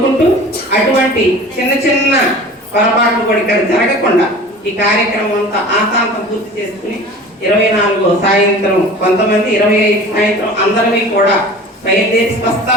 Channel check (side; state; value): both; normal; correlation 0.40